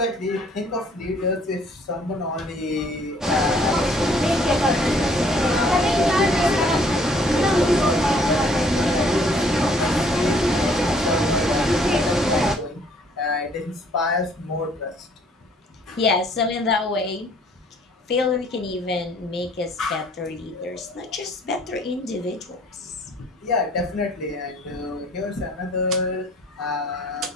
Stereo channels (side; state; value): both; normal; correlation 0.60